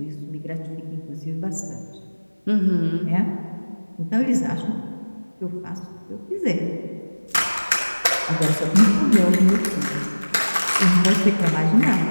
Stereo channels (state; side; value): inverted; both; correlation -1.00